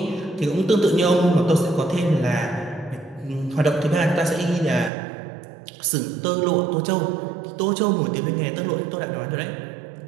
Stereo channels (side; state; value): left; drops out; at 4.9 s